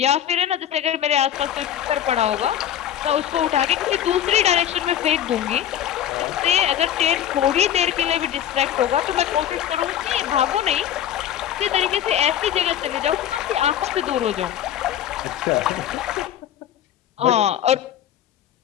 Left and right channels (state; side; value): quieter; right; 10.6 dB